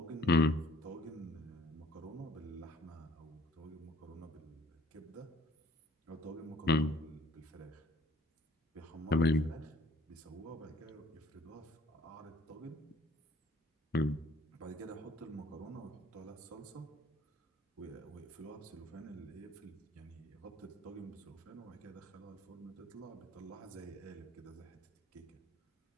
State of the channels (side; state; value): both; normal; correlation 0.57